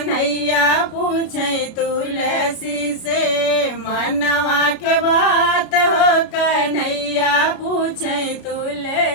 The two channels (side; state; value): right; late; 33 ms